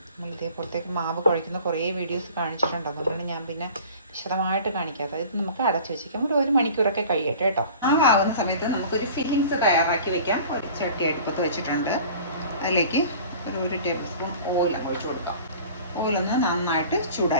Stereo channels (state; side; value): inverted; both; correlation -0.44